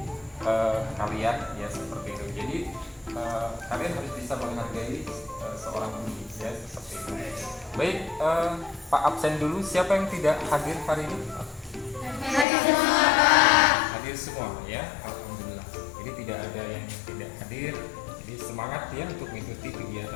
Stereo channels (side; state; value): right; drops out; at 12.5 s